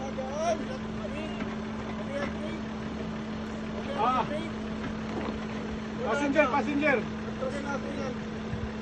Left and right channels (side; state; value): both; identical; correlation 1.00